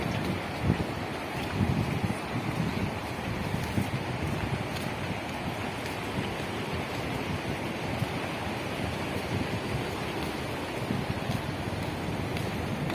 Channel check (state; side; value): identical; both; correlation 1.00